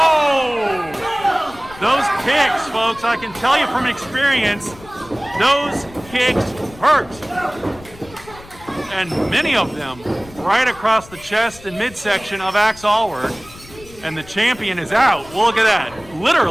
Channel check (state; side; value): noise; left; rumble, 21 dB below the sound